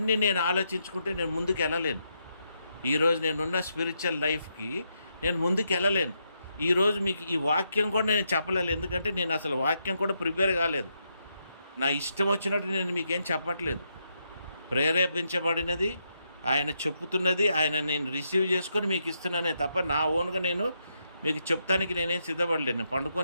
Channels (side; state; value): both; inverted; correlation -0.80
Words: నేను ఆలోచించుకుంటే నేను ముందుకు వెళ్ళలేను. ఈరోజు నేనున్న స్పిరిచువల్ లైఫ్కి నేను ముందుకు వెళ్ళలేను. ఈరోజు మీకు ఈ వాక్యం కూడా నేను చెప్పలేదు, ఎందుకంటే నేను అసలు వాక్యం కూడా ప్రిపేర్ కాలేదు. నా ఇష్టం వచ్చినట్టు నేను మీకేం చెప్పట్లేదు. ప్రేరేపించబడినది, ఆయన చెప్పుతున్నది, ఆయన నేను రిసీవ్ చేసుకొని మీకు ఇస్తున్నానే తప్ప నా ఓన్గా నేను మీకు చెప్తానికి నేనేం సిద్ధపడలేను. నేను